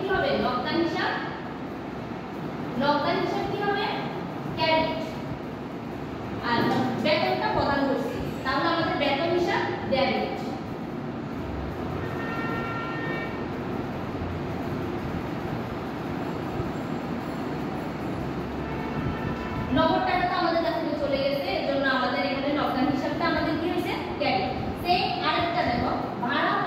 হবে, নগদান হিসাব কি হবে, ক্রেডিট। আর বেতনটা প্রদান করছি, তাহলে আমাদের বেতন হিসাব ডেবিট। নগদ টাকা তো আমাদের কাছ থেকে চলে গেছে, এজন্য আমাদের এখানে নগদান হিসাবটা আমাদের কি হয়েছে, ক্রেডিট। সেই আরেকটা দেখো, ভাড়া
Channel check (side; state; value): both; identical; correlation 1.00